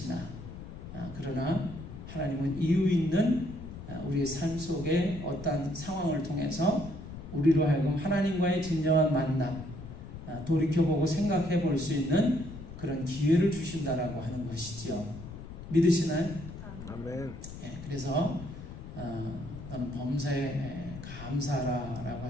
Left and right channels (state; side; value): noise; left; rumble, 12 dB below the sound